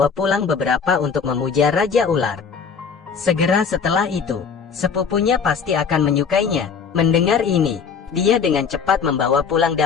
pulang beberapa untuk memuja Raja Ular. Segera setelah itu, sepupunya pasti akan menyukainya. Mendengar ini, dia dengan cepat membawa pulang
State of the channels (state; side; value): quieter; right; 6.2 dB